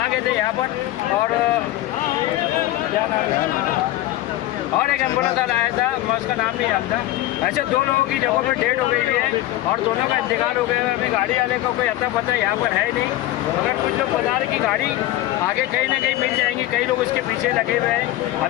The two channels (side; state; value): right; quieter; 15.5 dB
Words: गए थे यहाँ पर और एक एम्बुलेंस आया था, मैं उसका नाम नहीं जानता। ऐसे 2 लोगों की जगहों पर डेड हो गई हुई है और दोनों का इंतकाल हो गया है। अभी गाड़ी वाले का कोई अता पता यहाँ पर है नहीं, मगर कुछ लोग बता रहे कि गाड़ी आगे कहीं ना कहीं मिल जाएंगी, कई लोग इसके पीछे लगे हुए हैं।